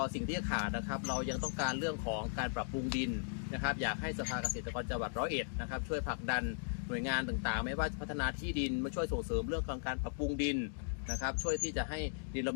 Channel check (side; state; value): right; silent; digital silence